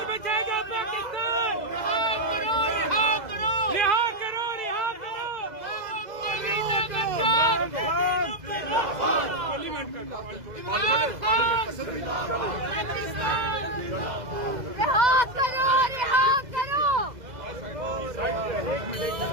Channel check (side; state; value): left; late; 2.0 ms